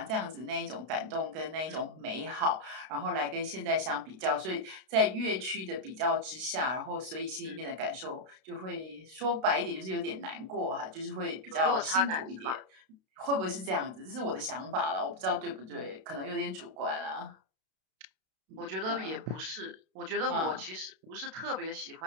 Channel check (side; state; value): left; late; 32 ms